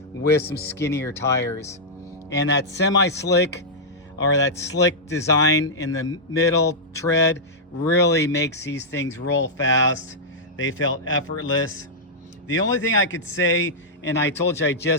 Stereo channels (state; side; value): normal; both; correlation -0.09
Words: with some skinnier tires. And that semi-slick or that slick design in the middle tread really makes these things roll fast. They felt effortless. The only thing I could say, and I told you I